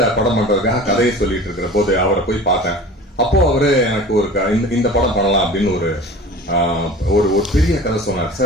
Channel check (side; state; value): both; normal; correlation 0.40